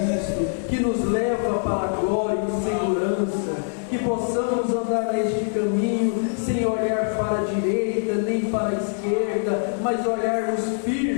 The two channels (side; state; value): right; silent; digital silence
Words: que nos leva para a glória e segurança, que possamos andar neste caminho sem olhar para a direita nem para a esquerda, mas olharmos